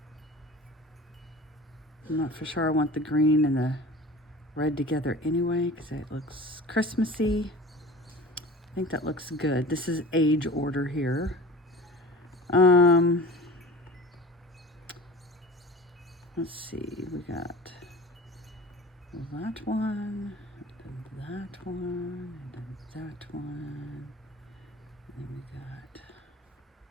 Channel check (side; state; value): both; normal; correlation 0.39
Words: I'm not for sure I want the green and the red together anyway, because it looks Christmassy. I think that looks good. This is age order here. Let's see, we got that one, and that one, and that one, and then we got,